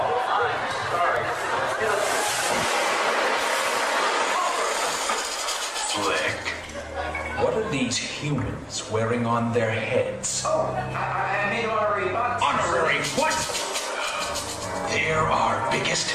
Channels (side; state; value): both; identical; correlation 1.00